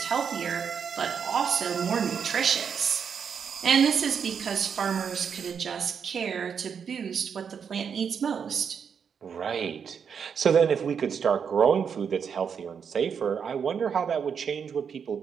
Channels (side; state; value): left; quieter; 6.9 dB